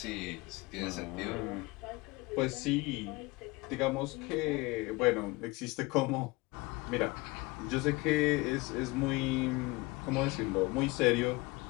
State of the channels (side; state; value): right; quieter; 23.3 dB